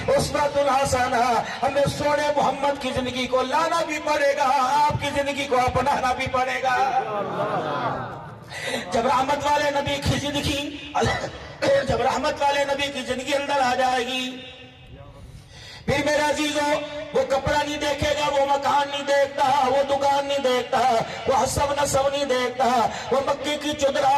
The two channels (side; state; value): both; identical; correlation 1.00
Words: اسوۃ حسنہ، ہمیں سونے محمد کی زندگی کو لانا بھی پڑے گا، آپ کی زندگی کو اپنانا بھی پڑے گا۔ جب رحمت والے نبی کی زندگی اندر آ جائے گی، پھر میرے عزیزوں وہ کپڑا نہیں دیکھے گا، وہ مکان نہیں دیکھتا، وہ دکان نہیں دیکھتا، وہ حسب نسب نہیں دیکھتا، وہ مکے کی